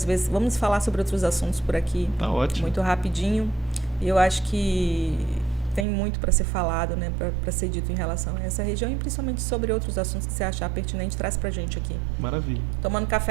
vezes. Vamos falar sobre outros assuntos por aqui. Tá ótimo. Muito rapidinho. E eu acho que tem muito para ser falado, né, para ser dito em relação a essa região e principalmente sobre outros assuntos que você achar pertinente, traz para a gente aqui. Maravilha. Tomando um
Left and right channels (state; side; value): drops out; left; at 5.9 s